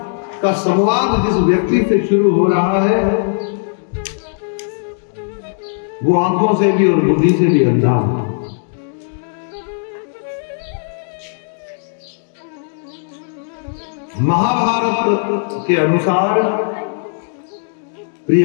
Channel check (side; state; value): right; silent; 68 dB below the other